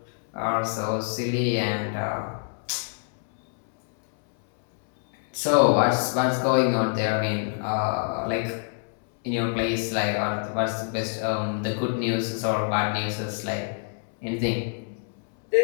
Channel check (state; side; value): silent; right; 61 dB below the other